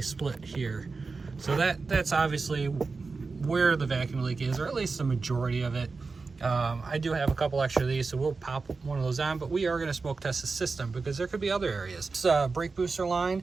split here. So that's obviously where the vacuum leak is, or at least the majority of it. I do have a couple extra of these, so we'll pop one of those on, but we are going to smoke test the system because there could be other areas. This brake booster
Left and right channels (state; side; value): quieter; left; 4.2 dB